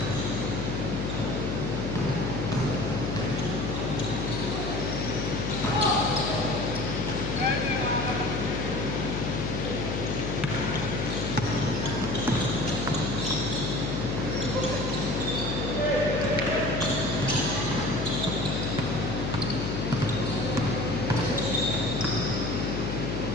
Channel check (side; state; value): left; noise; hum, 2 dB below the sound